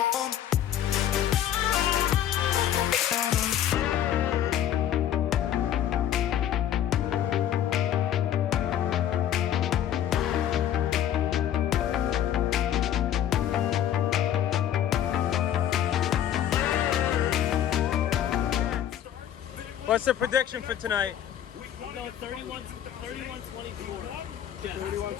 What's the prediction for tonight? No, 31-24.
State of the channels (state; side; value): quieter; right; 10.7 dB